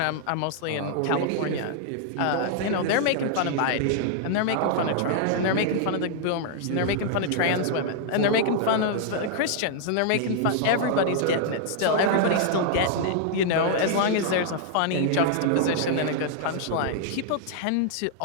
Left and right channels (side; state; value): both; different; correlation -0.01